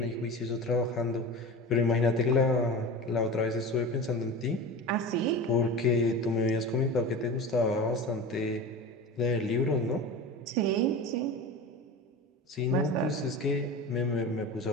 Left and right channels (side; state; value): both; normal; correlation 0.30